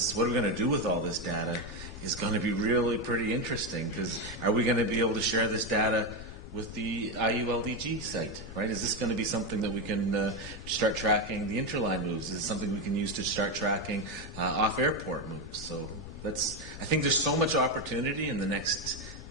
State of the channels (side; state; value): left; noise; rumble, 14 dB below the sound